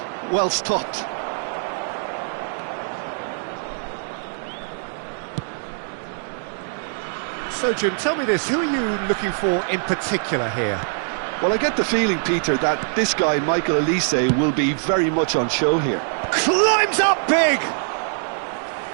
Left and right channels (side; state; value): left; silent; 64 dB below the other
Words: well stopped. So, Jim, tell me this, who are you looking for in particular here? Well, I get the feeling, Peter, that this guy, Michael Elise, will be very much on show here. Climbs up big!